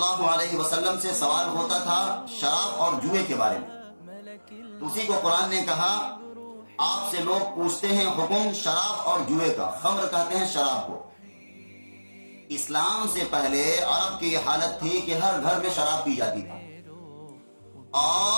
علیہ وسلم سے سوال ہوتا تھا شراب اور جوئے کے بارے میں، تو اسی کو قرآن نے کہا آپ سے لوگ پوچھتے ہیں حکم شراب اور جوئے کا، خمر کہتے ہیں شراب کو۔ اسلام سے پہلے عرب کی یہ حالت تھی کہ ہر گھر میں شراب پی جاتی تھی،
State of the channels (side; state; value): both; inverted; correlation -1.00